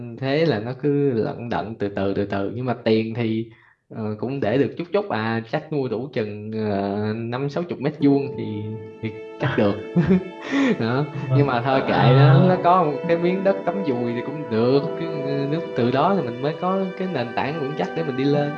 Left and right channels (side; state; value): both; identical; correlation 1.00